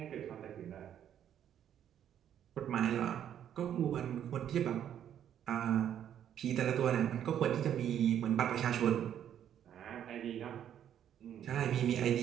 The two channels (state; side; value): quieter; left; 9.9 dB